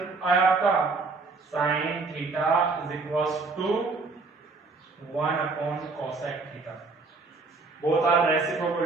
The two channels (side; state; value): left; quieter; 4.0 dB